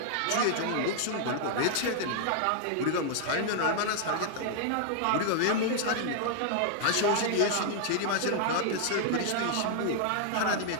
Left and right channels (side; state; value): both; different; correlation 0.00